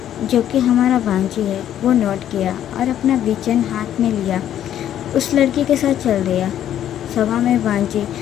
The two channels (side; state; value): right; quieter; 10.9 dB